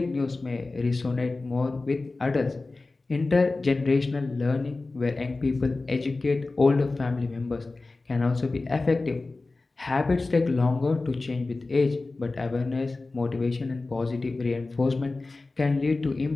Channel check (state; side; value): quieter; right; 3.4 dB